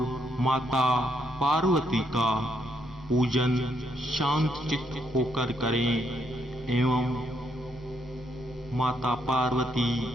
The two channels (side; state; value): both; normal; correlation 0.76